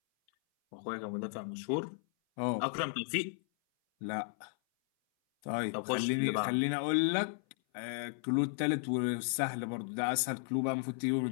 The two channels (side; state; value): right; silent; 55 dB below the other